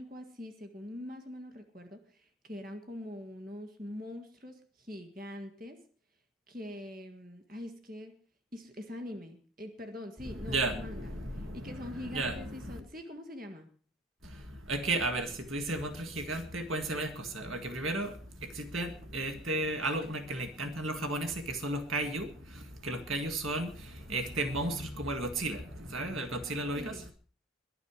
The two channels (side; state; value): both; normal; correlation 0.41